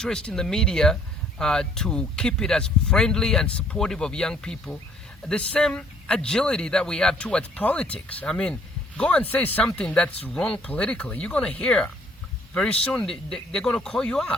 in the media to keep it as friendly and supportive of young people. The same agility that we have towards politics. I mean, go and say something that's wrong politically. You're going to hear. Very soon, they're going to call you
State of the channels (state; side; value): normal; both; correlation 0.61